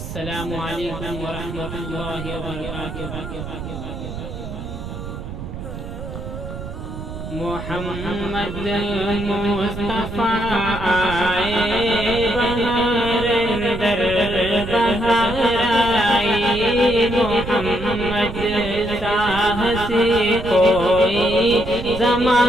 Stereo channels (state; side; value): noise; right; rumble, 9 dB below the sound